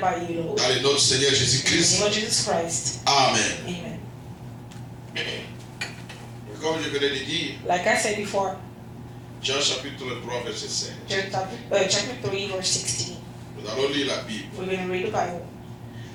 by you, Lord. Dans le nom du Seigneur In the Jésus-Christ. name of Jesus Christ. Amen. Amen. Et comme je venais de dire, Like I said before, Jean chapitre 3, verset 5. John chapter 3, verse 16. Nous allons lire la Bible. We're going to read the Bible.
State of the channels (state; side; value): identical; both; correlation 1.00